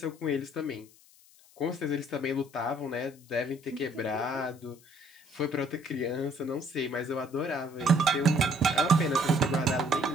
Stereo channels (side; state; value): left; noise; hiss, 26 dB below the sound